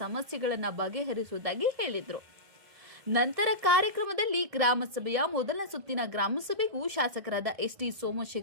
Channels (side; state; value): left; late; 1.7 ms